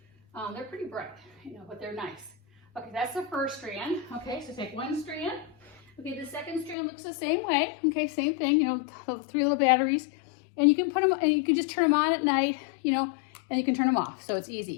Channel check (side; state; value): right; drops out; at 6.8 s